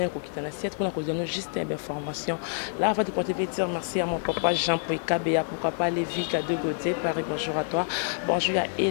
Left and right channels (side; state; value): right; silent; digital silence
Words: la siège pour nous donner juste une information. Là, avant de continuer, dire merci à mon papa Jean-Paul Kabea, pourquoi pas Lévi K2 Gauthier, Paris, bonjour à toi. Bonjour, il y a